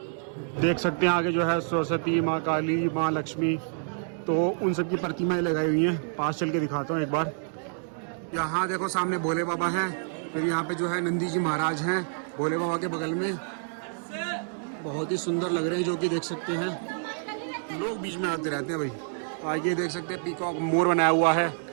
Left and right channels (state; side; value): silent; left; digital silence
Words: देख सकते हैं आगे जो है सरस्वती, माँ काली, माँ लक्ष्मी, तो उन सब की प्रतिमाएं लगाई हुई हैं। पास चल के दिखाता हूँ एक बार। यहाँ देखो सामने भोले बाबा हैं, फिर यहाँ पे जो है नंदी जी महाराज हैं भोले बाबा के बगल में, बहुत ही सुंदर लग रहे हैं, जो कि देख सकते हैं। लोग बीच में आते रहते हैं भाई। आगे देख सकते हैं पीकॉक मोर बनाया हुआ है।